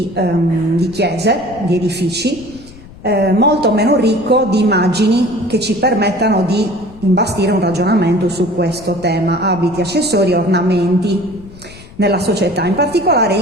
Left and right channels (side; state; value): left; noise; rumble, 19 dB below the sound